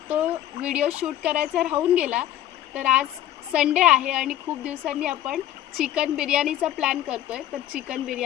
तो व्हिडिओ शूट करायचा राहून गेला। तर आज संडे आहे आणि खूप दिवसांनी आपण चिकन बिर्याणीचा प्लॅन करतोय, तर चिकन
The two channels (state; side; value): quieter; right; 12.3 dB